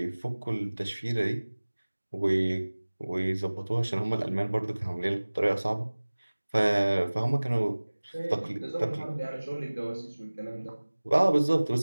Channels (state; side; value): inverted; both; correlation -1.00